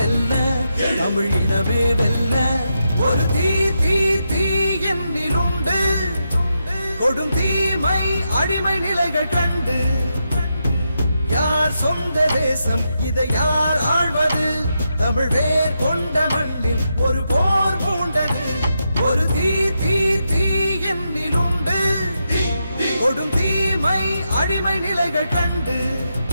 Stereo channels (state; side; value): inverted; both; correlation -0.84